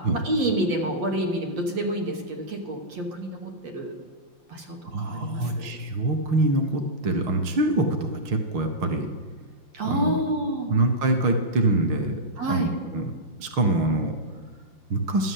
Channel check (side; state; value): left; late; 5.7 ms